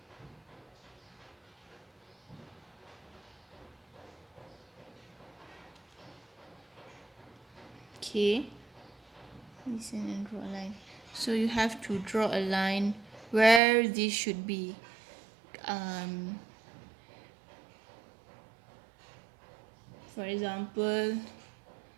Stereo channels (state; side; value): drops out; left; at 13.6 s